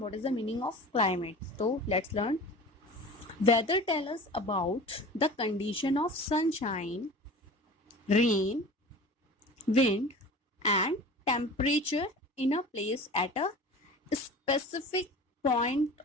is the meaning of climate? So let's learn. Weather tells us about the condition of sunshine, rain, wind and temperature in a place at a specific point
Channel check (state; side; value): normal; both; correlation 0.38